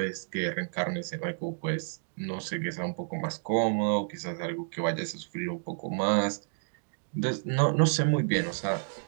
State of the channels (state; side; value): silent; left; digital silence